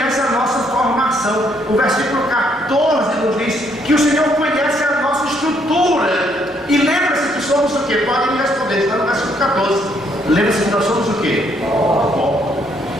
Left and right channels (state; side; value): normal; both; correlation 0.70